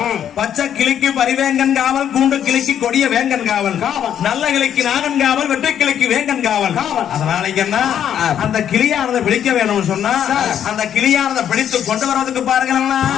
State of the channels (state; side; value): quieter; right; 9.5 dB